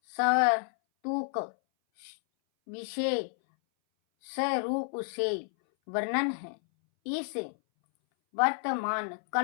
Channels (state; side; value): silent; right; 58 dB below the other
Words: सवतुक विषय स्वरूप से वर्णन है। इस वर्तमान